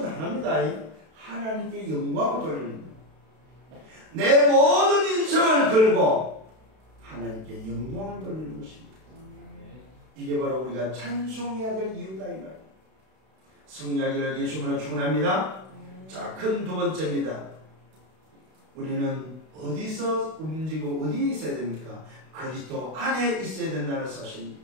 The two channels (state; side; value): late; left; 32 ms